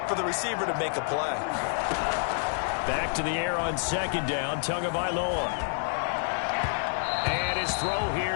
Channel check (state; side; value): silent; right; digital silence